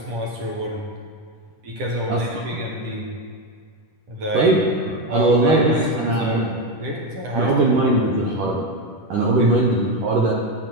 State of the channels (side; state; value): left; late; 10 ms